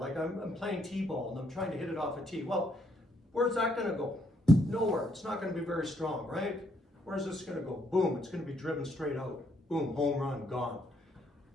I'm playing t-ball and I'm trying to hit it off a tee. Well, where's that going to go? Nowhere. It's not going to be very strong, right? Where's this going to go? Boom, it's going to be driven straight out. Boom, home run, gone.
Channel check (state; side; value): normal; both; correlation 0.71